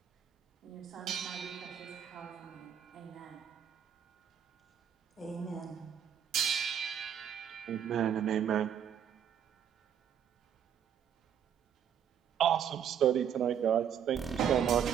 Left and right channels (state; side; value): quieter; left; 8.7 dB